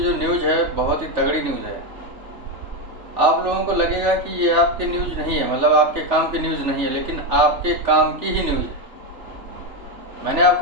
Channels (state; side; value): late; left; 3.4 ms